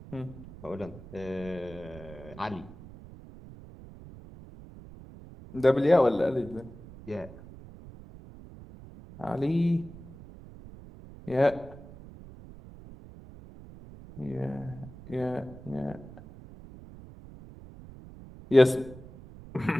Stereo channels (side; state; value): right; noise; rumble, 17 dB below the sound